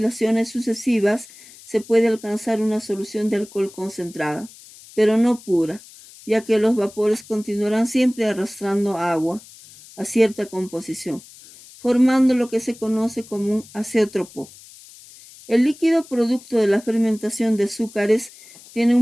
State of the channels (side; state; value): left; noise; hiss, 21 dB below the sound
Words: sucesivas, se puede alcanzar una solución de alcohol concentrada, pero no pura, ya que los vapores continuarán siempre arrastrando agua a cierta composición, formando lo que se conoce como un azeótropo. El líquido producto de la fermentación de azúcares tiene